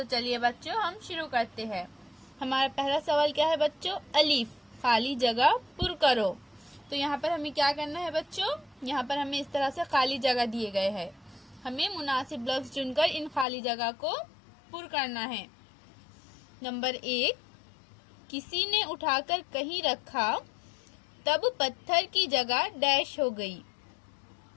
चलिए बच्चों, हम शुरू करते हैं। हमारा पहला सवाल क्या है बच्चों? अलीफ, खाली जगह पुर करो। तो यहाँ पर हमें क्या करना है बच्चों? यहाँ पर हमें इस तरह से खाली जगह दिए गए हैं। हमें मुनासिब लफ्ज चुनकर इन खाली जगह को पुर करना है। नंबर 1, किसी ने उठाकर कहीं रखा, तब पत्थर की जगह डैश हो गई।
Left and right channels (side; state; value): right; drops out; at 13.5 s